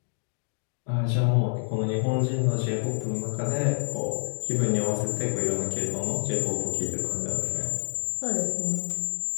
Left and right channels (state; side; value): silent; right; 60 dB below the other